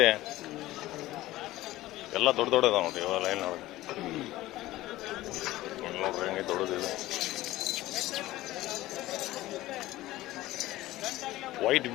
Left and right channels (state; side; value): quieter; right; 16.7 dB